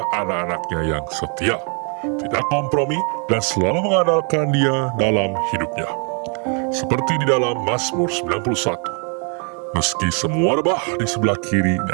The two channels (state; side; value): quieter; left; 39.2 dB